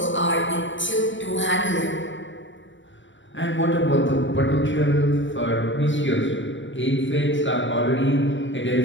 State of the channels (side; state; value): right; late; 0.55 ms